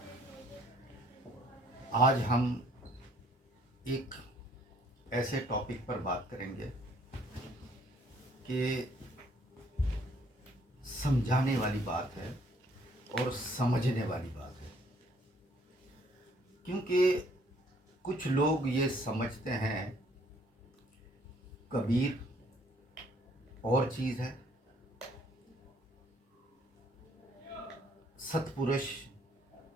आज हम एक ऐसे टॉपिक पर बात करेंगे कि समझाने वाली बात है और समझने वाली बात है, क्योंकि कुछ लोग ये समझते हैं कबीर और चीज़ है, सतपुरुष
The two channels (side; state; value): both; normal; correlation 0.63